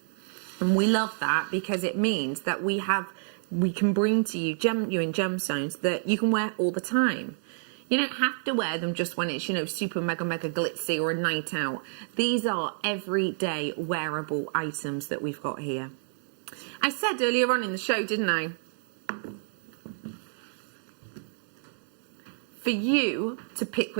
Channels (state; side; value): silent; left; 59 dB below the other